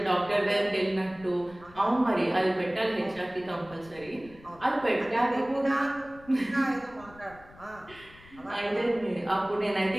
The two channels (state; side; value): noise; left; rumble, 22 dB below the sound